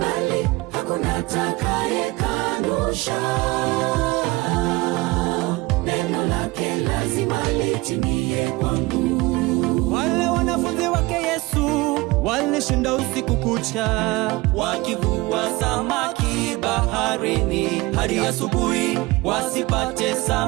hakuna atakayekanusha. Neno lake lazima litimie kwangu. Wale wanafunzi wake Yesu walishinda usiku kucha, wakivua samaki baharini hadi asubuhi, wasipate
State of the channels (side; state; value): left; quieter; 21.8 dB